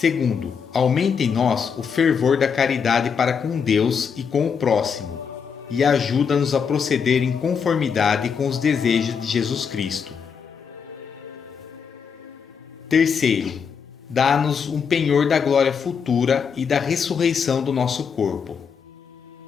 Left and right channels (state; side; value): quieter; right; 6.5 dB